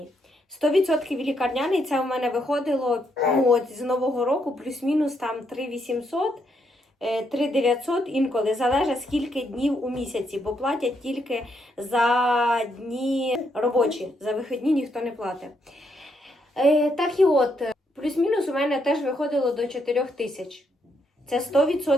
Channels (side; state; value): both; normal; correlation 0.77